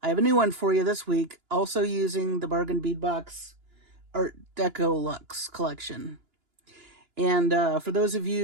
I have a new one for you this week, also using the bargain bead box Art Deco Luxe collection. And for those of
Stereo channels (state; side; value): late; left; 2.9 ms